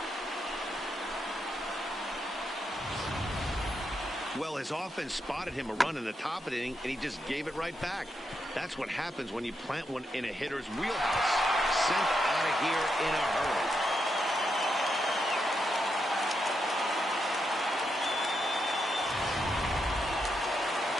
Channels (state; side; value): normal; both; correlation 0.83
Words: Well, his offense spotted him a run in the top of the inning, and he just gave it right back. That's what happens when you plant one in a hitter's wheelhouse. Sent out of here in a hurry.